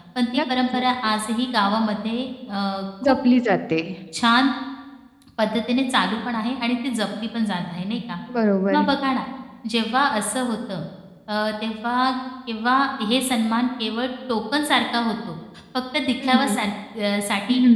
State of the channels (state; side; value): identical; both; correlation 1.00